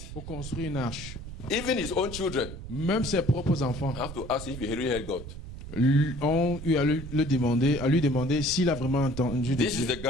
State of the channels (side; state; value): right; noise; rumble, 11 dB below the sound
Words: pour construire une arche. Even his own children Même ses propres enfants have to ask if he really heard God. ont eu à lui demander s'il a vraiment entendu de This is Dieu. the